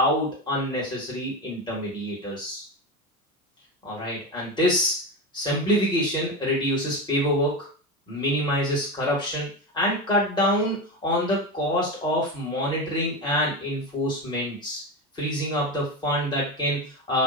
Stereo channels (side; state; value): both; normal; correlation 0.19